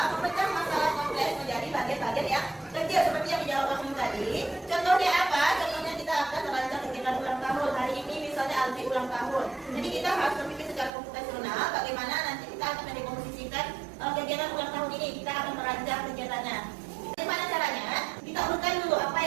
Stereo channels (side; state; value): left; drops out; at 10.9 s